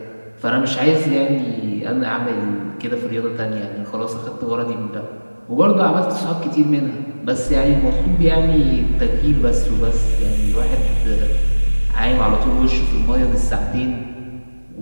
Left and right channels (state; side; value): inverted; both; correlation -1.00